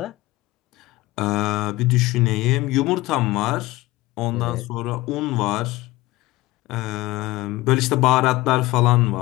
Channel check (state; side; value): quieter; right; 19.1 dB